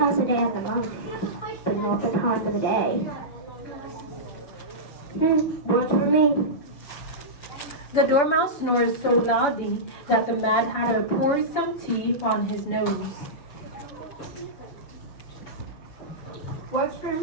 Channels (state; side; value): late; right; 6.9 ms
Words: the day of the month, but not the time of the day. Works for me. The dormouse snores so loudly that the Mad Hatter pours some tea on his nose. Works for